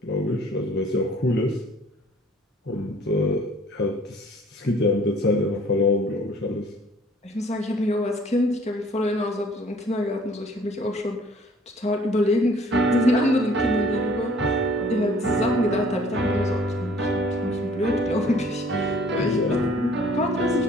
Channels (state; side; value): normal; both; correlation 0.55